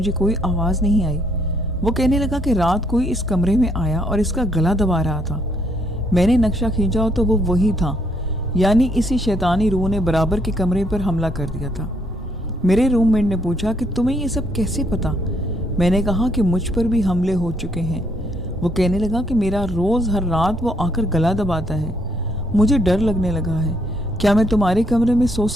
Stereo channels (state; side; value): normal; both; correlation 0.70